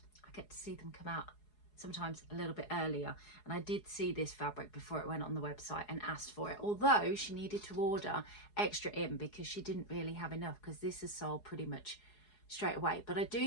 I get to see them come out sometimes a little bit earlier, and I did see this fabric before it went on the website and asked for it, although she needed to order extra in because she didn't really have enough, because this is sold pretty much straight away. But I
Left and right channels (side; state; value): right; late; 4.8 ms